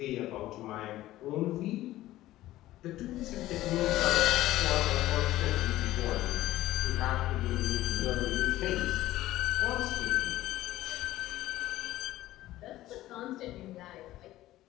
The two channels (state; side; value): quieter; right; 15.5 dB